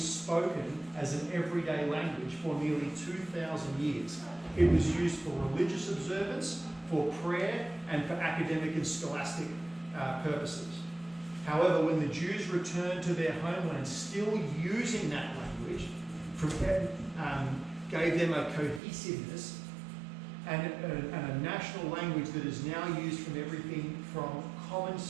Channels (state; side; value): drops out; left; at 18.8 s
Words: as an everyday language for nearly 2,000 years. It was used for religious observance, for prayer, and for academic and scholastic purposes. However, when the Jews returned to their homeland, still using that language, gave them a cohesiveness and a national language that is now used from everything from common